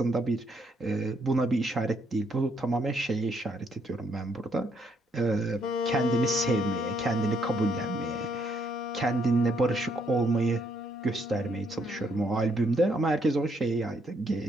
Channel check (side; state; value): both; normal; correlation 0.72